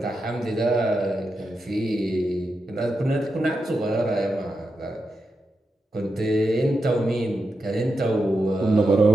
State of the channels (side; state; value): both; normal; correlation 0.87